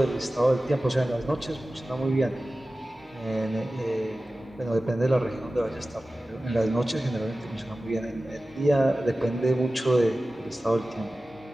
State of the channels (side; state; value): both; normal; correlation 0.96